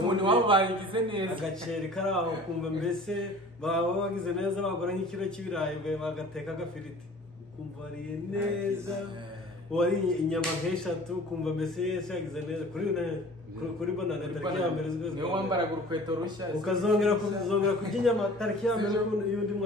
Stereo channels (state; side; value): normal; both; correlation 0.45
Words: wabo bagize neza agaceri kari aho kumva mbese baba bagize neza bagura nk'ikiro cy'ibirayi bagateka agafiriti ukumva wariye neza wari inyama nk'eshatu ukumva mbese yese yagize neza kuri bonane tariki ya mbere z'ukwezi niyo wambaraga urukweto rushya ukazongera kurya inyama tariki ya mbere y'undi